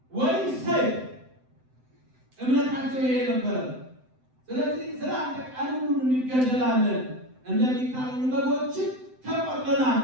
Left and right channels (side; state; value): left; late; 7.8 ms